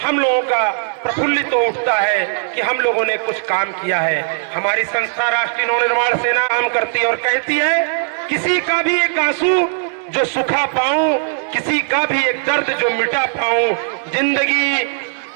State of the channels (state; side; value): silent; left; digital silence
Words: हम लोगों का प्रफुल्लित हो उठता है कि हम लोगों ने कुछ काम किया है। हमारी संस्था राष्ट्रीय नवनिर्माण सेना काम करती है और कहती है, किसी का भी एक आंसू जो सुखा पाऊं, किसी का भी एक दर्द जो मिटा पाऊं, जिंदगी